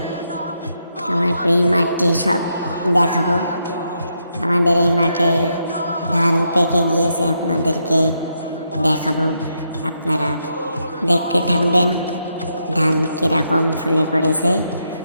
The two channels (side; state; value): both; inverted; correlation -0.80